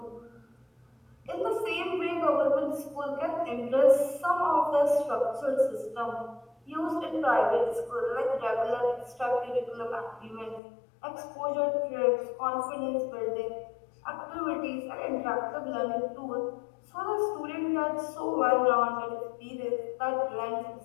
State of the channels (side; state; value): right; drops out; at 10.6 s